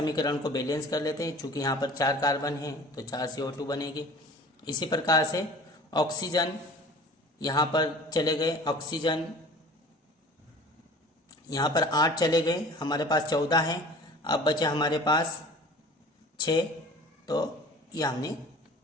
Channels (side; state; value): both; normal; correlation 0.44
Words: को बैलेंस कर लेते हैं, चूंकि यहाँ पर 4 कार्बन हैं तो 4 CO2 बनेगी। इसी प्रकार से ऑक्सीजन यहाँ पर चले गए, ऑक्सीजन यहाँ पर 8 चले गए, हमारे पास 14 हैं। अब बचे हमारे पास 6, तो ये हमने